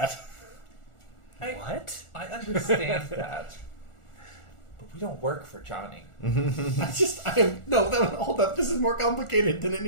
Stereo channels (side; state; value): right; late; 1.4 ms